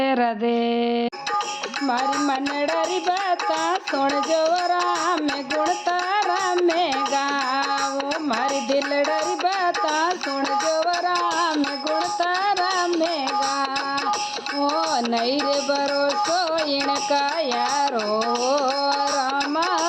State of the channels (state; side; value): identical; both; correlation 1.00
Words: राधे। मारी मनडरी बाता सुन जो राम गुण तारा में गाओ। मारी दिलडरी बाता सुन जो राम गुण तारा में गाओ। नहीं रे भरोसो इनका यारो रामा